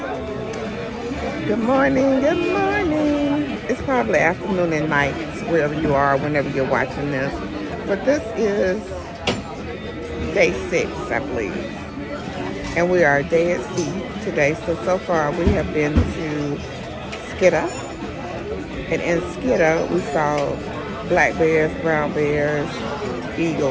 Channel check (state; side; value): identical; both; correlation 1.00